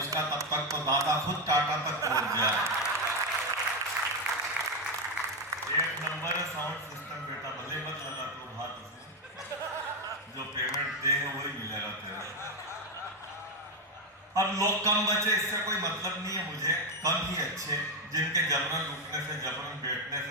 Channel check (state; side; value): normal; both; correlation 0.07